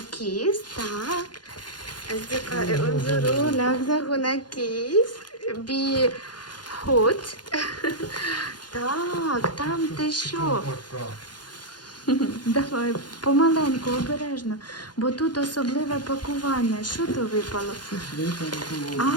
كيس. Так, أصدقائي انظروا، لحظة، هنا كيس بحوت. Так, там ти що? Давай, помаленьку, обережно, бо тут особливе пакування. Що то випало?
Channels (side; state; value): right; late; 0.70 ms